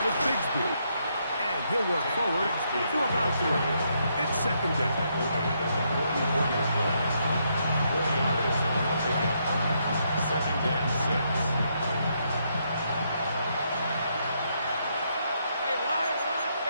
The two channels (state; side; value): inverted; both; correlation -0.76